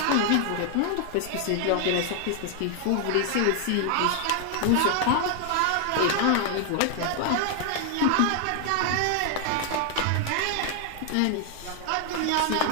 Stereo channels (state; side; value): different; both; correlation 0.00